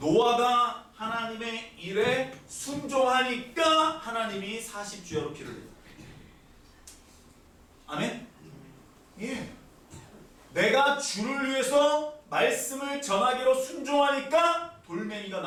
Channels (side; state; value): both; identical; correlation 1.00